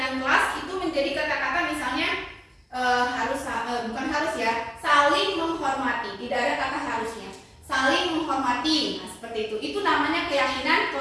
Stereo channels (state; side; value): identical; both; correlation 1.00